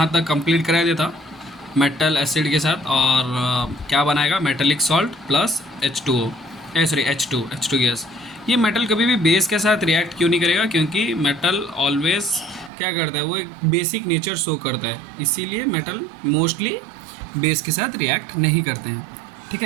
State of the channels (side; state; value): left; drops out; at 12.7 s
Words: तक कंप्लीट करा दिया था मेटल एसिड के साथ। और क्या बनाएगा, metallic salt plus H2O gas. ये मेटल कभी भी बेस के साथ रिएक्ट क्यों नहीं करेगा? क्योंकि मेटल ऑलवेज क्या करता है, वो एक बेसिक नेचर शो करता है, इसीलिए मेटल मोस्टली बेस के साथ रिएक्ट नहीं करते हैं। ठीक